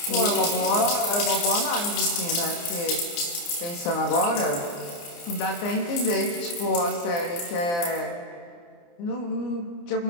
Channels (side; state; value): right; late; 29 ms